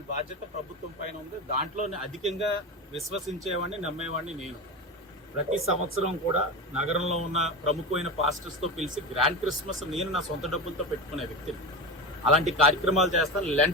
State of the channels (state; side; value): normal; both; correlation 0.22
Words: బాధ్యత ప్రభుత్వం పైన ఉంది. దాంట్లోనే అధికంగా విశ్వసించేవాడిని, నమ్మేవాడిని నేను. ప్రతి సంవత్సరం కూడా నగరంలో ఉన్న ప్రముఖమైన పాస్టర్స్తో పిలిచి గ్రాండ్ క్రిస్మస్ నేను నా సొంత డబ్బులతో పెట్టుకునే వ్యక్తిని. అలాంటి కార్యక్రమాలు చేస్తాను.